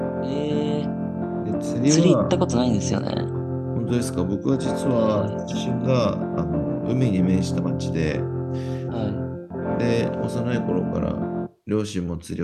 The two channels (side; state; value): both; identical; correlation 1.00